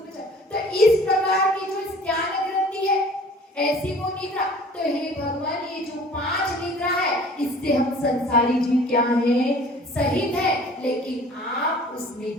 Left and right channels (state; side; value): normal; both; correlation 0.49